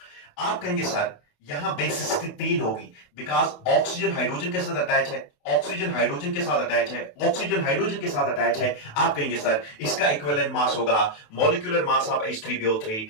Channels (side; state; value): right; late; 28 ms